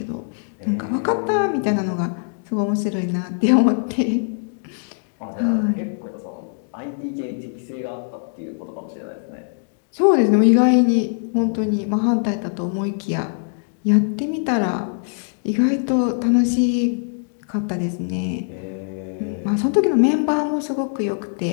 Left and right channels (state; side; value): silent; right; digital silence